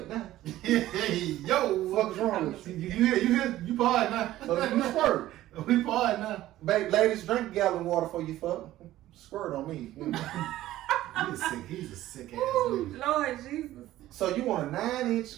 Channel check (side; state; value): left; quieter; 14.7 dB